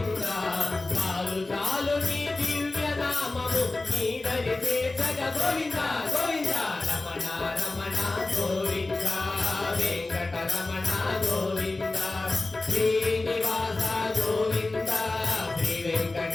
చాలు చాలు నీ దివ్య నామము నీ దరి చేసగ గోవింద గోవింద రమణ రమణ గోవింద వెంకటరమణ గోవింద శ్రీనివాస గోవింద శ్రీ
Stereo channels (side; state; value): right; quieter; 3.2 dB